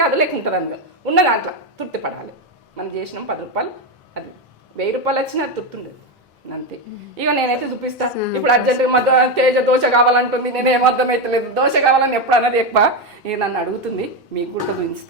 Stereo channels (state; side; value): normal; both; correlation 0.11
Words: కాదు లేకుంటుందని కాదు ఉన్న దాంట్లో తృప్తి పడాలి మనం చేసినాం 10 రూపాయలు అది 1000 రూపాయలు వచ్చినా తృప్తి ఉండదు అంతే ఇక నేనైతే చూపిస్తా ఇప్పుడు అర్జెంటుగా తేజ దోశ కావాలంటుంది నేను ఏమర్థమైతలేదు దోశ కావాలని ఎప్పుడు అన్నది ఎక్కువ ఇక నన్ను అడుగుతుంది మీకు కూడా